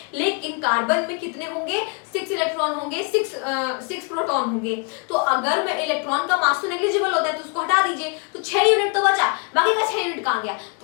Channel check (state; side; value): quieter; right; 35.3 dB